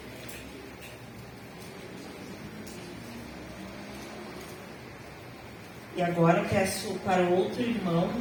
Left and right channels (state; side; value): identical; both; correlation 1.00